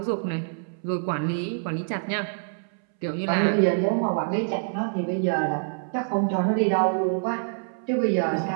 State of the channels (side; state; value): left; silent; 61 dB below the other